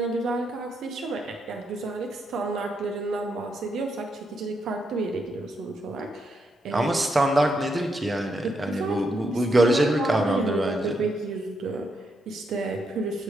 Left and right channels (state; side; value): normal; both; correlation 0.80